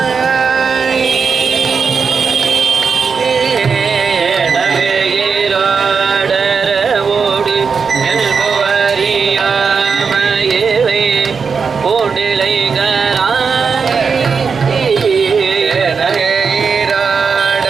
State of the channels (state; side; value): quieter; left; 5.6 dB